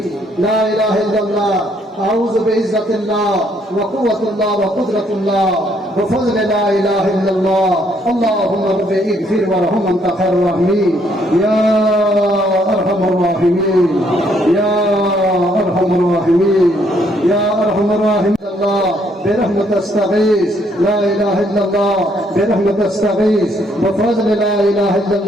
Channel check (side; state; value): both; normal; correlation 0.69